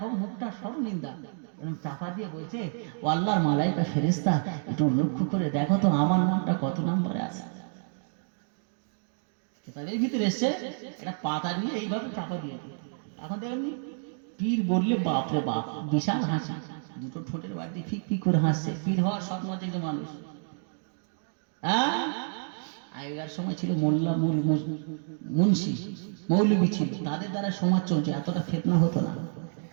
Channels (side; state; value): left; silent; 59 dB below the other